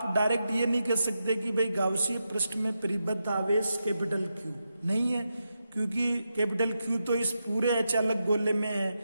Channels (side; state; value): both; inverted; correlation -0.87